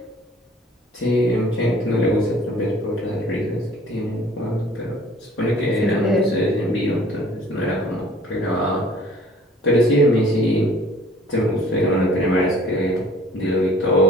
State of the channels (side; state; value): both; normal; correlation 0.53